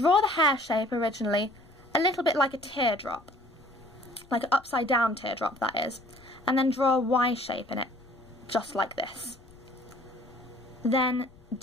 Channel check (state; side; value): noise; left; rumble, 25 dB below the sound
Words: the hair shape originally a little bit like a teardrop, like an upside down teardrop, that is, and then draw a Y shape in it, just like this. Then